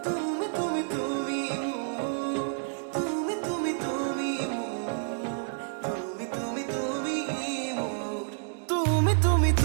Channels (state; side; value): silent; left; digital silence